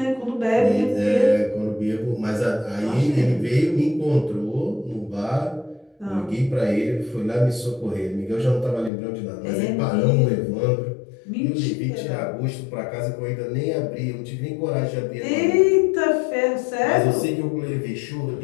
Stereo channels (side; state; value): right; drops out; at 8.9 s